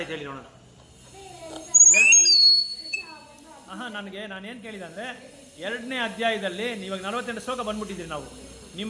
ಹೇಳಿ ನೋಡೋಣ. ನಾನೇನು ಕೇಳಿದೆ ಅಂದರೆ, 2ನೇ ಅಧ್ಯಾಯದಲ್ಲಿ ಇವಾಗ 48 ಶ್ಲೋಕ ಬಂದ್ಬಿಟ್ಟಿದ್ದೀರಿ ನಾವು.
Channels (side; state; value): both; identical; correlation 1.00